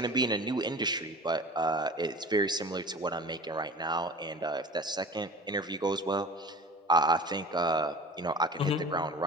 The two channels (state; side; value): normal; both; correlation 0.38